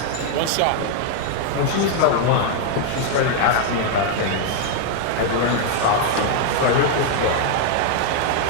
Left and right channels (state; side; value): different; both; correlation 0.00